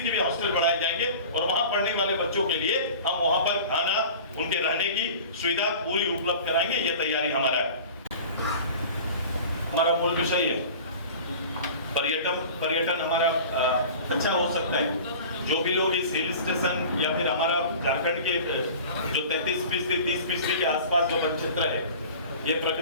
भी हॉस्टल बढ़ाए जाएंगे। और वहां पढ़ने वाले बच्चों के लिए हम वहां पर खाना, उनके रहने की सुविधा पूरी उपलब्ध कराएंगे। ये तैयारी हमारा है। हमारा मूल विषय है पर्यटन हमारा अच्छा हो सकता है। जो भी लोग इस हिल स्टेशन या फिर हमारा झारखंड के जो 33% 30% के आसपास जो वन क्षेत्र है, ये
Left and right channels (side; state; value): both; inverted; correlation -0.40